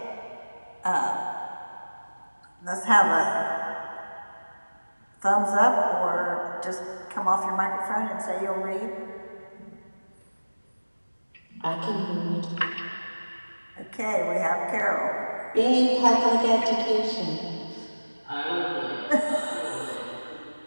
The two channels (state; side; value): inverted; both; correlation -1.00